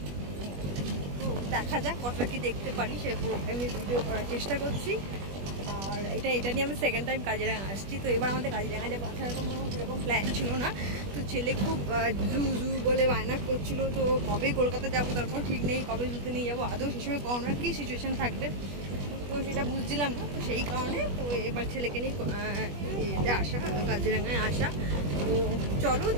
তো দেখা যাক কতটা কি দেখতে পারি সে আমি ভিডিও করার চেষ্টা করছি। আর এটা নিয়ে আমি সেকেন্ড টাইম কাজিরাঙা আসছি। তো এবার আমাদের কাজিরাঙা যাবো আসার কোনো সেরকম প্ল্যান ছিল না। তো ছেলে খুব জু বলে বায়না করছিল। তো কবে কলকাতা যাবো তারপর ঠিক নেই, কবে জুতে নিয়ে যাবো, আদৌ সে সময় করোনার কী সিচুয়েশান থাকবে তো সেটা বুঝছিলাম না। তো সেই কারণে তো এবার ছেলেকে নিয়ে আসা, কাজিরাঙায় আসা। তো চলো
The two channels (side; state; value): left; late; 21 ms